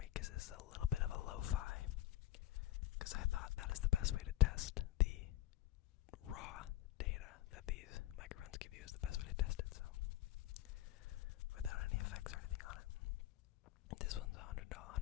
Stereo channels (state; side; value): quieter; right; 14.2 dB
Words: because it's a little bit of a lo-fi, because I thought that is the best way to test the raw data that these microphones give you, is the best way to test it, so without any effects or anything on it. This one's $110,